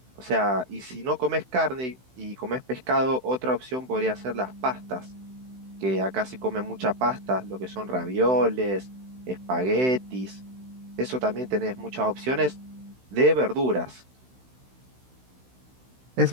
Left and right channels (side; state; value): left; late; 16 ms